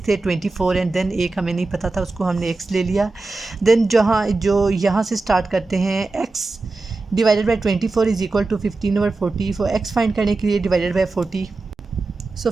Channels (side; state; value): left; quieter; 3.5 dB